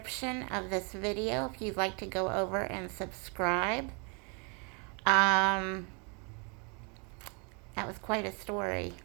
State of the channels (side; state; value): left; quieter; 34.5 dB